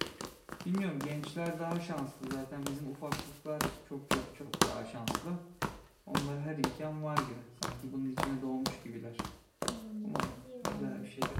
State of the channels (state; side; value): identical; both; correlation 1.00